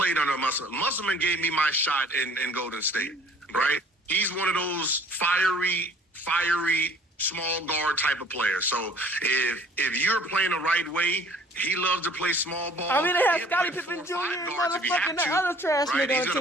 under Musselman. Musselman gave me my shot in Golden State, right? He's one of those fiery small guard type of players. So if you're playing the right way, he loves to play small ball. I mean, they have Scottie Pippen Jr. and motherfucking that other trash nigga. He's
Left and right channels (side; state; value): both; normal; correlation 0.54